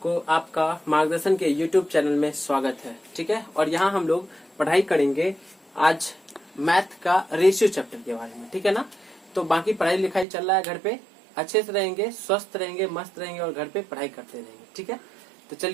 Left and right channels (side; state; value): left; drops out; at 10.2 s